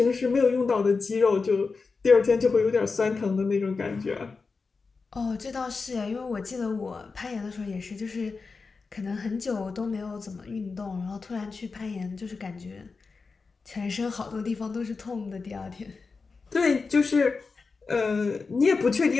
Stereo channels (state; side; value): quieter; right; 4.5 dB